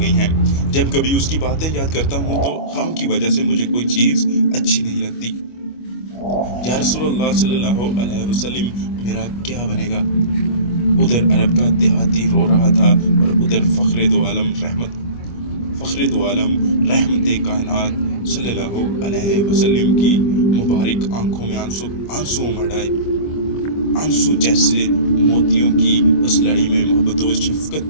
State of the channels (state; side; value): late; right; 25 ms